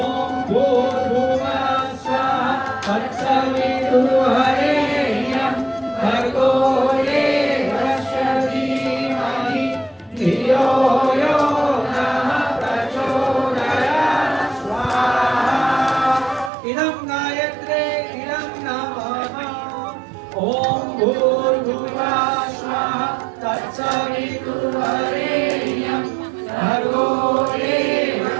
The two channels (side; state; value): left; drops out; at 16.5 s